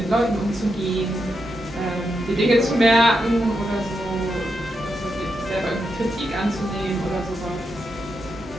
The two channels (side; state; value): both; normal; correlation 0.85